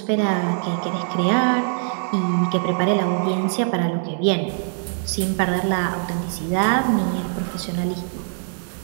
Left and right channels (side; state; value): left; silent; 64 dB below the other